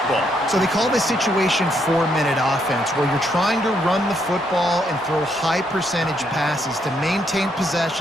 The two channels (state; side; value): normal; both; correlation 0.74